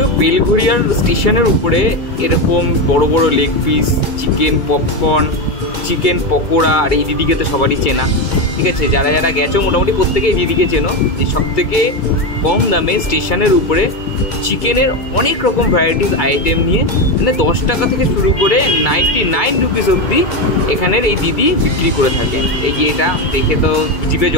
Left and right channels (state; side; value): late; right; 2.3 ms